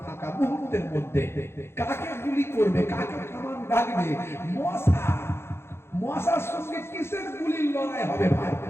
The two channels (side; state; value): right; late; 0.12 ms